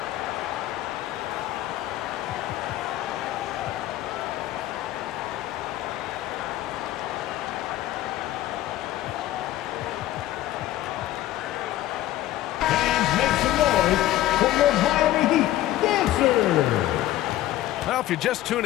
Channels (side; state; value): right; quieter; 14.5 dB